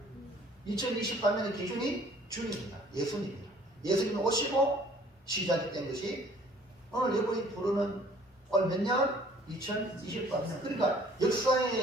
2023년의 기준이 주님입니다. 예수님입니다. 예수님이 오시고 시작이 된 것이 오늘 여러분이 부르는 오늘 몇 년? 2023년. 그러니까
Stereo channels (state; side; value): normal; both; correlation 0.55